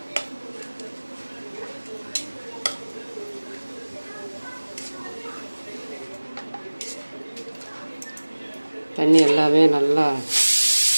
தண்ணி எல்லாமே நல்லா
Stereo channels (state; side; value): inverted; both; correlation -1.00